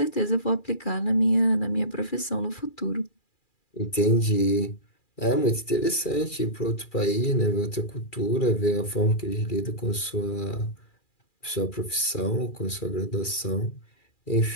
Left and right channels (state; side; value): late; right; 2.4 ms